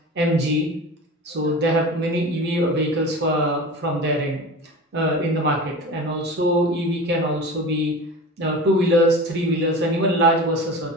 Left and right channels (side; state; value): both; normal; correlation 0.33